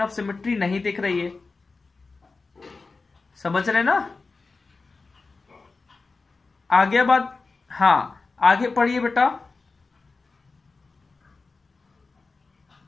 ऑफ सिमेट्री नहीं दिख रही है, समझ रहे ना। आगे बात, हाँ आगे पढ़िए बेटा।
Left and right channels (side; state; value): right; quieter; 4.0 dB